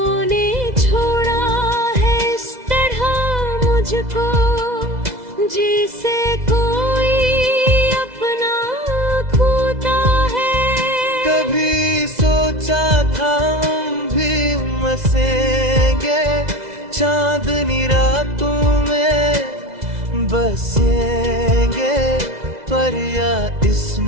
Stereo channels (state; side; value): late; left; 2.0 ms